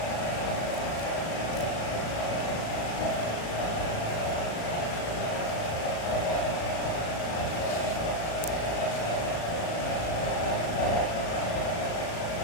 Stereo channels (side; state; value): right; late; 36 ms